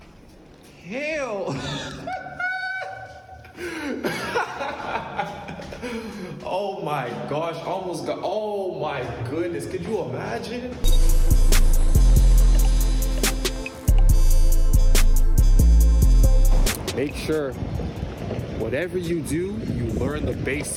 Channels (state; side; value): identical; both; correlation 1.00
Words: Hell. Oh my gosh, almost got, oh my goodness, could you imagine? Make sure whatever you do, you learn the